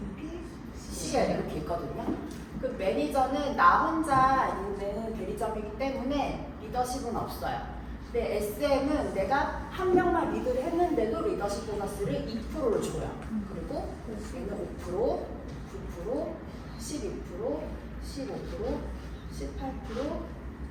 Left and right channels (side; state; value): both; identical; correlation 1.00